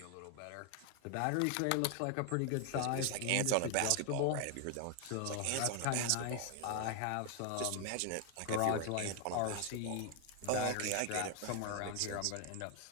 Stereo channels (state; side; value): different; both; correlation 0.00